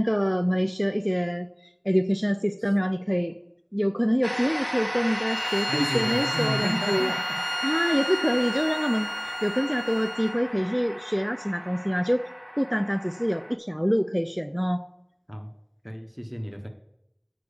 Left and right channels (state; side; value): identical; both; correlation 1.00